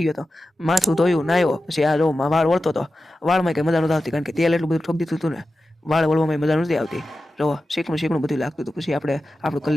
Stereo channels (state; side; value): normal; both; correlation 0.93